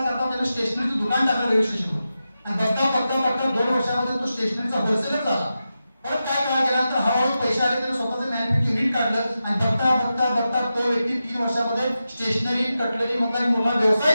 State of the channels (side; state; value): both; inverted; correlation -0.91